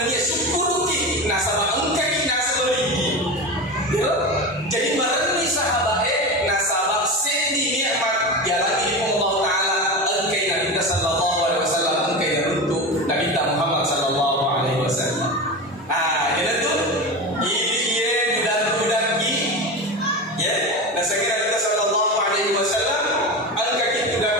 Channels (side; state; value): both; normal; correlation 0.24